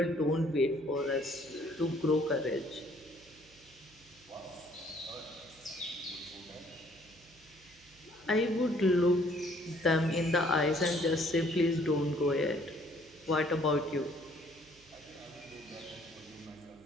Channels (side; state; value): right; noise; hum, 27 dB below the sound